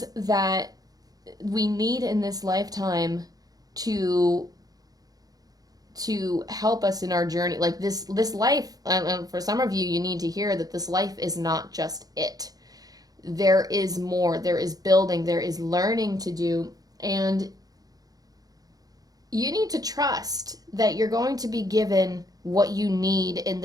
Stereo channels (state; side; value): late; left; 0.18 ms